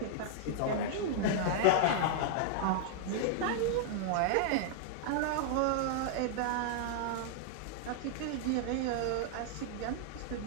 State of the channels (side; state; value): both; different; correlation -0.01